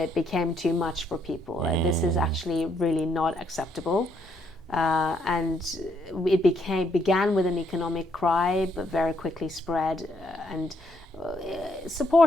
became too much for people. This is actually really not acceptable. And it began with an economic cry, but very quickly spread and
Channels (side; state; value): both; normal; correlation 0.72